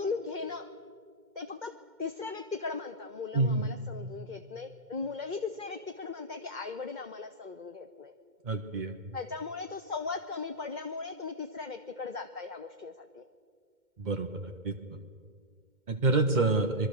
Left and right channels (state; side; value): late; left; 2.1 ms